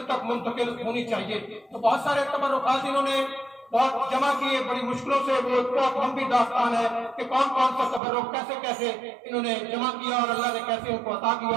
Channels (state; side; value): drops out; left; at 8.0 s